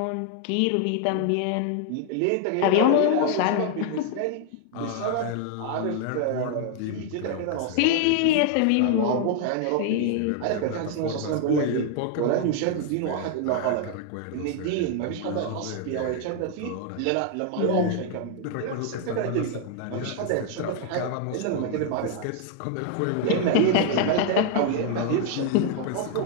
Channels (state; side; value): different; both; correlation 0.00